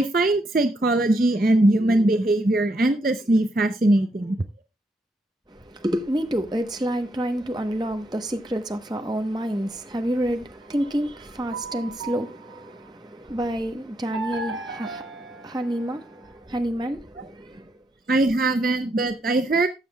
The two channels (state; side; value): normal; both; correlation 0.78